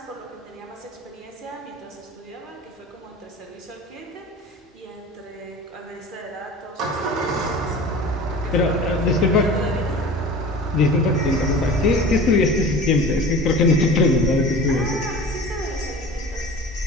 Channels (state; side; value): normal; both; correlation 0.39